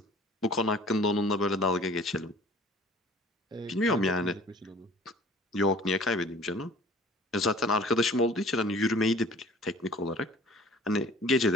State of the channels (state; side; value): normal; both; correlation 0.49